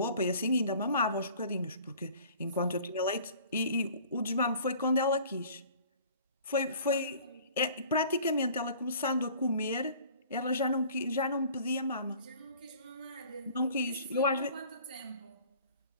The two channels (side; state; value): both; inverted; correlation -0.49